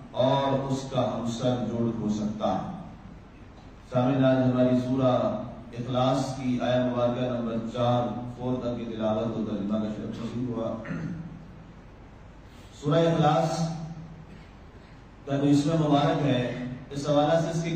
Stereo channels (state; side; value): identical; both; correlation 1.00